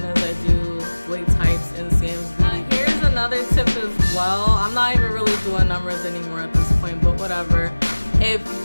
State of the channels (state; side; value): inverted; both; correlation -1.00